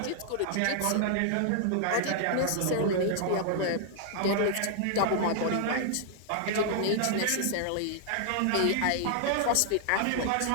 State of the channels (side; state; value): both; different; correlation -0.01